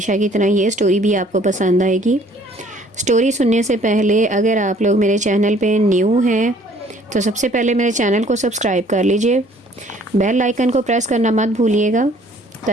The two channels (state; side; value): normal; both; correlation 0.57